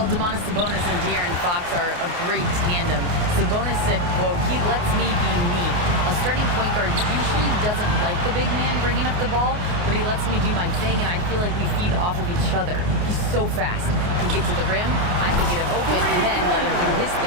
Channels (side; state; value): left; late; 28 ms